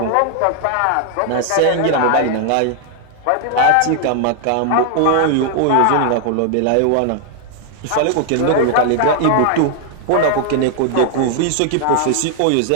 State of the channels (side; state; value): both; different; correlation 0.00